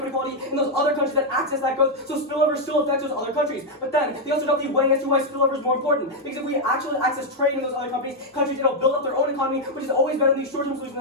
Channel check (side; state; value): both; normal; correlation 0.00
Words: inequality in those other countries that access that growth, so spillover still affects those other countries. But then, they also don't be weighing as to why spillover is more important. Because if we actually access trade in those other countries, it'll build up their own economy, which is always better than these short-term solutions